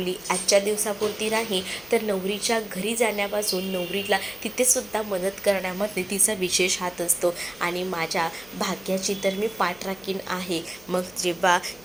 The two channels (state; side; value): noise; left; hum, 27 dB below the sound